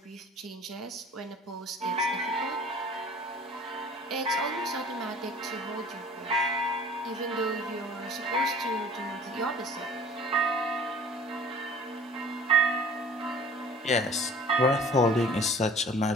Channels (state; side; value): normal; both; correlation 0.47